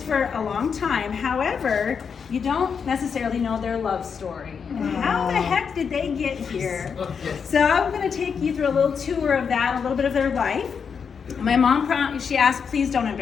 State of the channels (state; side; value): quieter; right; 6.4 dB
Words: for a long time. However, you don't necessarily know their love story. How the heck did they get here? So I'm going to take you through a little tour of that, a little bit of their life. My mom, she asked, please don't